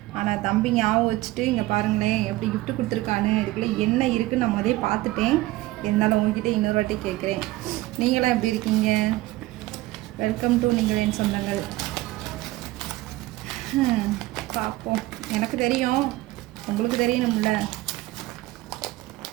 ஆனால் தம்பி ஞாபகம் வச்சுட்டு இங்கே பாருங்களேன் எப்படி கிஃப்ட் கொடுத்துருக்கானு. இதுக்குள்ளே என்ன இருக்குன்னு நான் முதலே பார்த்துட்டேன். இருந்தாலும் உங்ககிட்ட இன்னொரு வாட்டி கேட்குறேன், நீங்களாம் எப்படி இருக்கீங்க? வெல்கம் டு நீங்கள் என் சொந்தங்கள். பார்ப்போம். எனக்கு தெரியும், உங்களுக்கு தெரியணும்ல.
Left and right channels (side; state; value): left; quieter; 18.0 dB